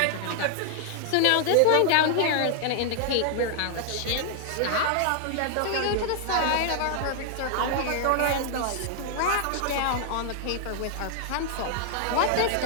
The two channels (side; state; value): both; different; correlation -0.01